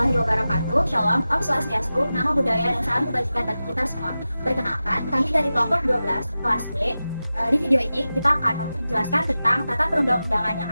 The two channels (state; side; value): inverted; both; correlation -0.94